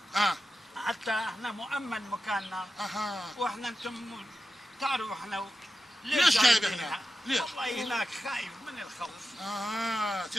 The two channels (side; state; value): both; normal; correlation 0.91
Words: اه حتى احنا مؤمن مكاننا. اها. واحنا انتم تعرفوا احنا ليش جايب جايبين هنا؟ ليش؟ والله هناك خايف من الخوف.